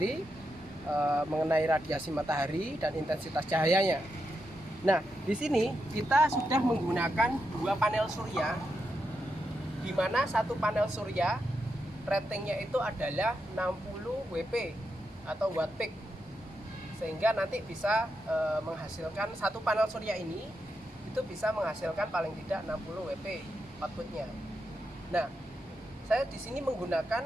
mengenai radiasi matahari dan intensitas cahayanya. Nah, di sini kita sudah menggunakan dua panel surya, di mana satu panel surya ratingnya itu adalah 60 WP atau watt peak, sehingga nanti bisa menghasilkan satu panel surya ini itu bisa menghasilkan paling tidak 60 WP outputnya. Nah, saya di sini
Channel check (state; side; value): normal; both; correlation 0.85